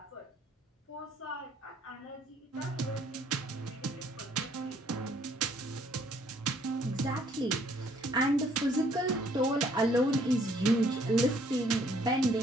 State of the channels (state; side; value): normal; both; correlation 0.63